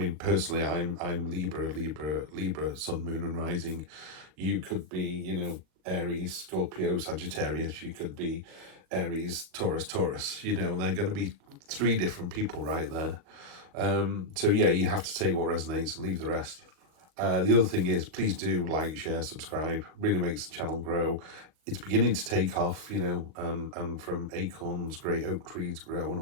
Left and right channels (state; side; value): late; left; 39 ms